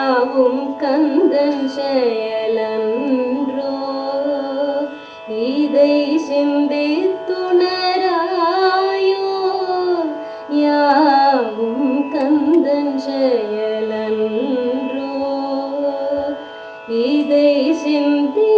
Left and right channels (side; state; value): both; identical; correlation 1.00